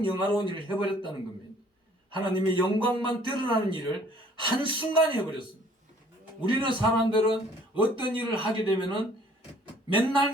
영화로운 일을 해버렸다는 겁니다. 하나님의 영광만 드러나는 일을 한순간에 해버렸습니다. 우리는 사람들은 어떤 일을 하게 되면은 맨날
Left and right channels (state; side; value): normal; both; correlation 0.57